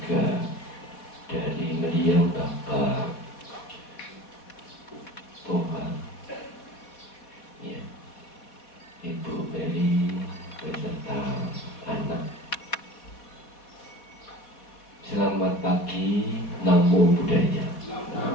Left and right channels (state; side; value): late; right; 4.1 ms